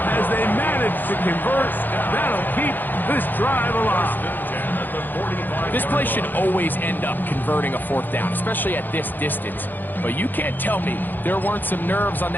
As they manage to convert, that'll keep this drive alive. This play should always end up converting a 4th down, especially at this distance. But you can't tell me there weren't some nerves on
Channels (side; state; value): right; late; 0.089 ms